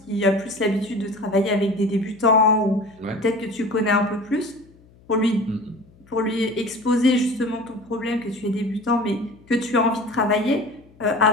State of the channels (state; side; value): noise; left; hum, 27 dB below the sound